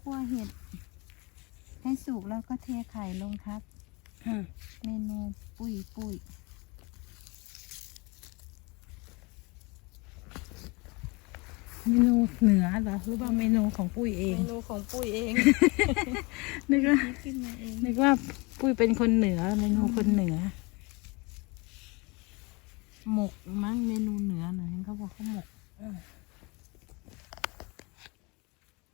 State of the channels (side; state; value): right; quieter; 27.4 dB